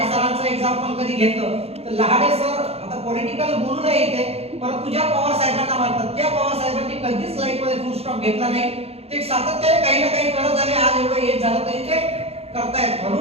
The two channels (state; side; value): late; left; 0.29 ms